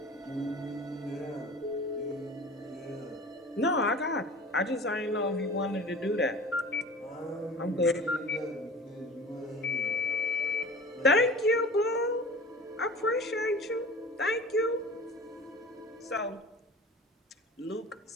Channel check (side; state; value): both; normal; correlation 0.40